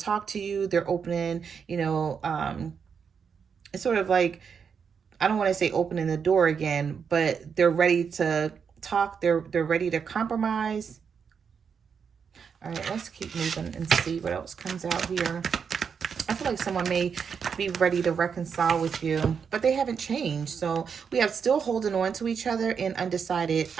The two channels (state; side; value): quieter; left; 6.5 dB